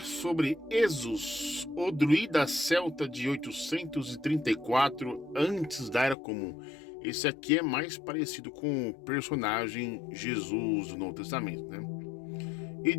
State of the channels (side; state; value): right; drops out; at 6.2 s